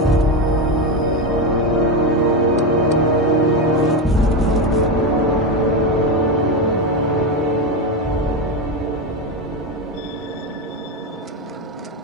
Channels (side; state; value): both; normal; correlation 0.13